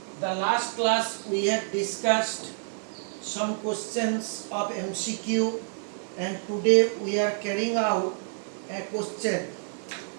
The last class we have discussed some questions of MCQ and today we are carrying out a question.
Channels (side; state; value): left; silent; 59 dB below the other